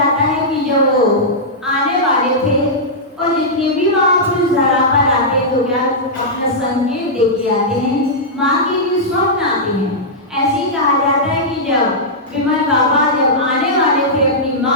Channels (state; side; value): normal; both; correlation -0.10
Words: है कि जब वो आने वाले थे और जितने भी महापुरुष धरा पर आते तो क्या अपना संकेत दे के आते हैं, माँ के लिए स्वप्न आते हैं। ऐसे ही कहा जाता है कि जब विमल बाबा जब आने वाले थे अपनी